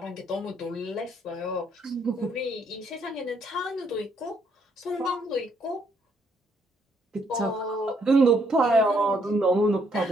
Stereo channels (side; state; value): both; normal; correlation 0.70